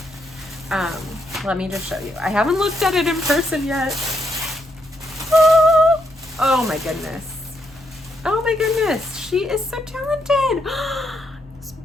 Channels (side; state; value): both; normal; correlation 0.77